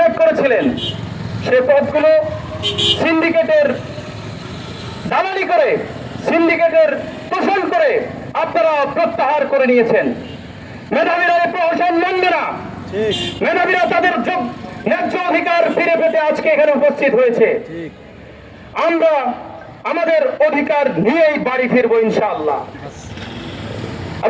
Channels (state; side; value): identical; both; correlation 1.00